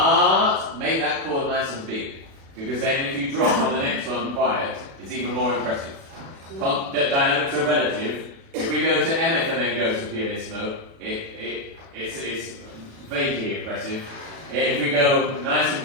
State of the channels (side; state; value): left; late; 36 ms